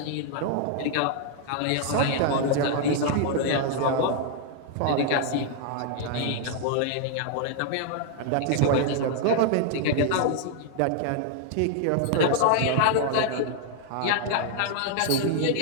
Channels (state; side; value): different; both; correlation 0.00